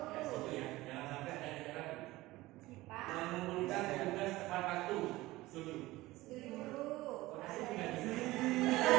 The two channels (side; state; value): left; quieter; 18.6 dB